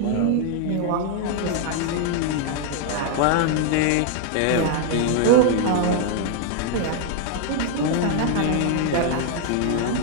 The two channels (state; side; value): different; both; correlation 0.00